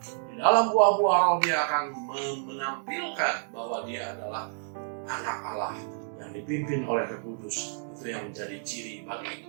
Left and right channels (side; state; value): left; silent; digital silence